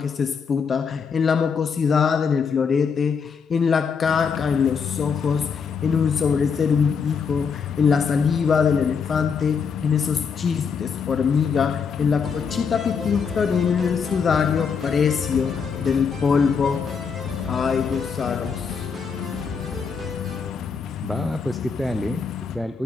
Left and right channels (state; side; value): quieter; right; 6.0 dB